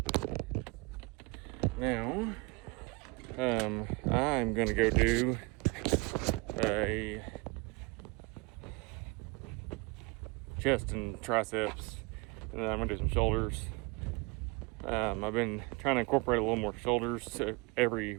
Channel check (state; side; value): quieter; left; 27.3 dB